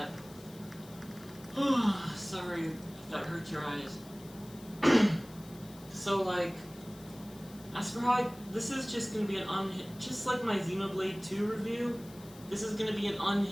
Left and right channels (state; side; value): noise; left; hiss, 21 dB below the sound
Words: Sorry if that hurt your eyes. So as for how this is just gonna be an just like my Xenoblade 2 review, this is gonna be an